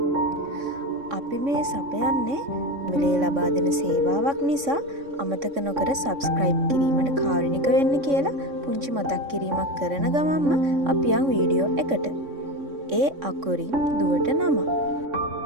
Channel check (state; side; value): late; left; 3.6 ms